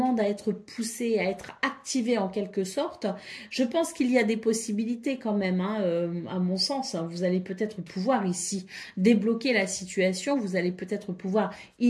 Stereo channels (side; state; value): both; identical; correlation 1.00